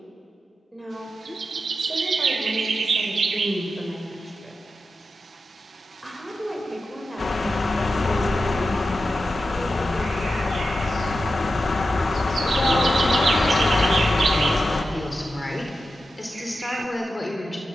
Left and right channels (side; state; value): both; normal; correlation 0.91